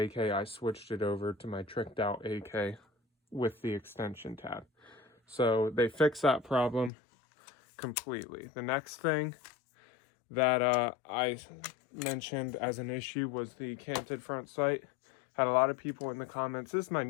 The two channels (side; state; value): right; drops out; at 6.9 s